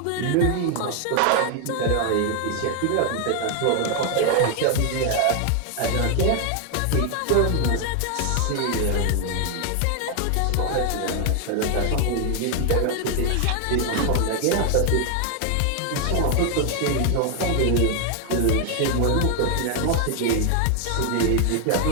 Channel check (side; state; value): both; different; correlation 0.00